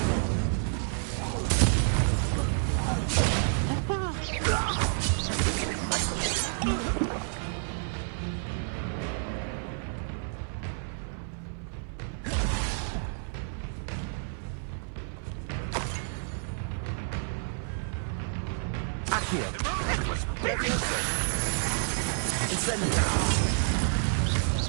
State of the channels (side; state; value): left; silent; 55 dB below the other